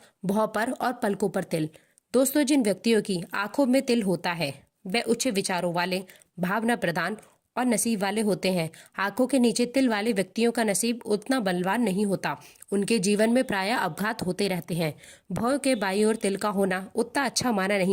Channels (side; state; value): both; identical; correlation 1.00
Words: भौं पर और पलकों पर तिल। दोस्तों, जिन व्यक्तियों की आंखों में तिल होता है वे उच्च विचारों वाले, भावना प्रधान और नसीब वाले होते हैं। आंखों के नीचे तिल वाले व्यक्तियों का नसीब उतना बलवान नहीं होता। उनके जीवन में प्रायः अपघात होते रहते हैं। भौं के बाईं ओर तिल का होना उतना अच्छा माना